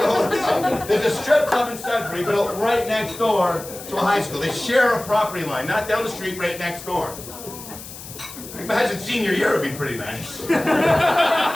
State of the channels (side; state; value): left; noise; hiss, 14 dB below the sound